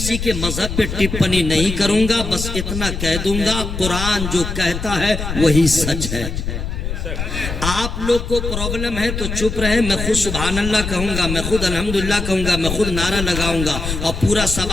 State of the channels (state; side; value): noise; left; rumble, 5 dB below the sound